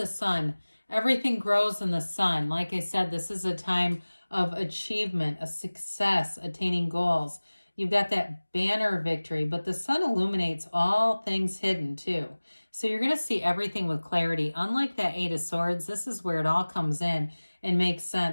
sun. Everything grows in the sun. Like I said, this is a time of achievement, a success, attaining goals. You've got that banner victory, but the sun illuminates all things hidden too. So you're going to see everything with clarity. Unlike that Eight of Swords, this is where it all comes in and makes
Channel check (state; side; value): inverted; both; correlation -1.00